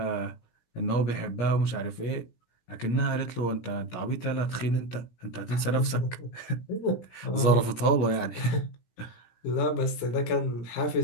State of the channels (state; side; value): late; right; 17 ms